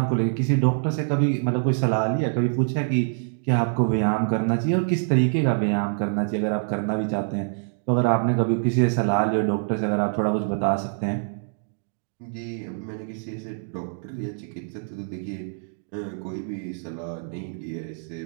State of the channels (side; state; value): left; silent; digital silence